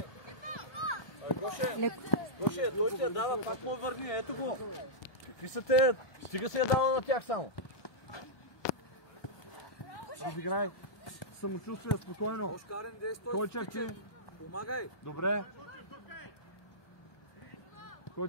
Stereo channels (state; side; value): late; right; 1.2 ms